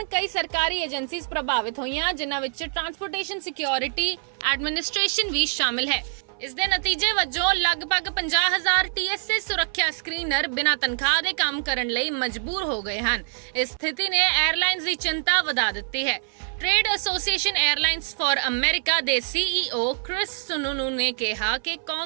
ਕਈ ਸਰਕਾਰੀ ਏਜੰਸੀਜ਼ ਪ੍ਰਭਾਵਿਤ ਹੋਈਆਂ, ਜਿਨ੍ਹਾਂ ਵਿੱਚ ਟਰਾਂਸਪੋਰਟੇਸ਼ਨ ਸਿਕਿਉਰਿਟੀ ਐਡਮਿਨਿਸਟ੍ਰੇਸ਼ਨ ਵੀ ਸ਼ਾਮਿਲ ਹੈ। ਇਸ ਦੇ ਨਤੀਜੇ ਵਜੋਂ ਲਗਭਗ 50,000 TSA ਸੁਰੱਖਿਆ ਸਕਰੀਨਰ ਬਿਨਾਂ ਤਨਖਾਹ ਦੇ ਕੰਮ ਕਰਨ ਲਈ ਮਜਬੂਰ ਹੋ ਗਏ ਹਨ। ਇਸ ਸਥਿਤੀ ਨੇ 에ਅਰਲਾਈਨਜ਼ ਦੀ ਚਿੰਤਾ ਵਧਾ ਦਿੱਤੀ ਹੈ। ਟ੍ਰੇਡ ਐਸੋਸੀਏਸ਼ਨ 에ਅਰਲਾਈਨਜ਼ ਫਾਰ ਅਮਰੀਕਾ ਦੇ CEO ਕ੍ਰਿਸ ਸੁਨੂਨੂ ਨੇ ਕਿਹਾ ਕਿ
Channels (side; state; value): left; silent; 59 dB below the other